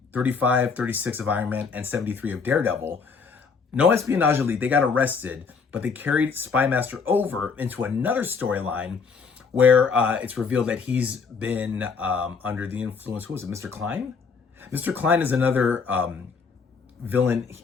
35, 36 of Iron Man and 73 of Daredevil. No Espionage Elite, they got arrested, but they carried Spy Master over into another storyline where it's revealed that he's been under the influence. Who was it? Mr. Klein? Mr. Klein is another villain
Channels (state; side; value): quieter; right; 5.3 dB